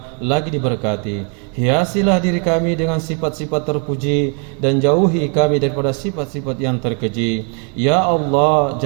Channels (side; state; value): left; quieter; 39.3 dB